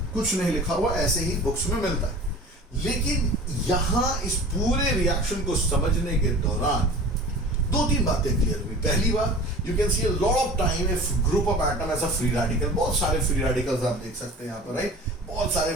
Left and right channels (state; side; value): normal; both; correlation 0.41